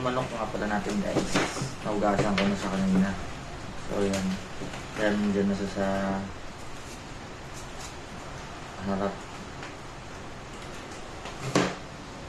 manok nga pala natin guys, naugasan ko na sa kanina. So yan, kaya nandiyan na sa harap.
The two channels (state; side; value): identical; both; correlation 1.00